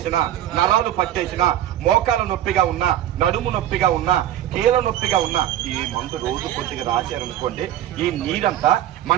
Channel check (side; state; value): left; quieter; 12.1 dB